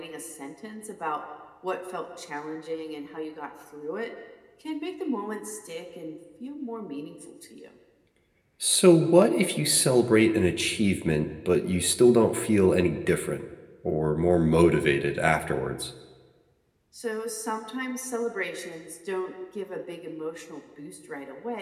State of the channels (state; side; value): identical; both; correlation 1.00